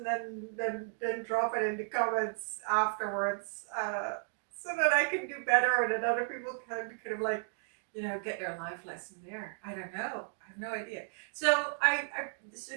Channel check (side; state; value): left; silent; digital silence